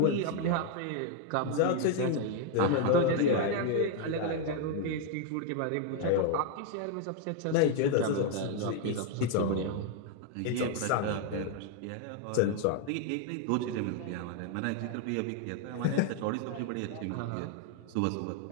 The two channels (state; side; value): different; both; correlation 0.00